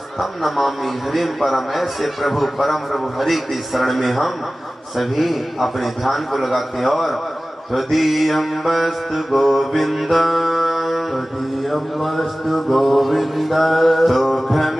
नमामि हरिं परम। ऐसे प्रभु परम प्रभु हरि की शरण में हम सभी अपने ध्यान को लगाते हैं। और त्वदीयं वस्तु गोविंद त्वदीयं वस्तु गोविन्द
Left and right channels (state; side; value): normal; both; correlation 0.97